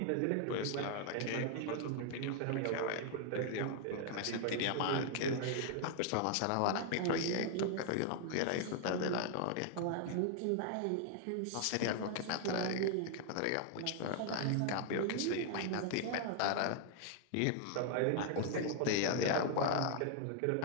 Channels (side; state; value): both; different; correlation 0.00